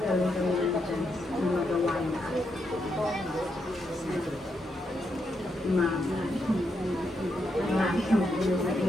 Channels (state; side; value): normal; both; correlation 0.81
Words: kami ng chance na magawa niya. Marami yung puno sa